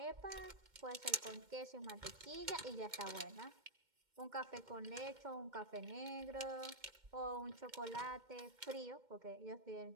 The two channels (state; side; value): late; left; 2.1 ms